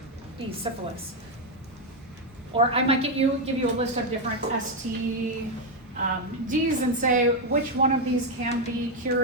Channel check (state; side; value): normal; both; correlation 0.04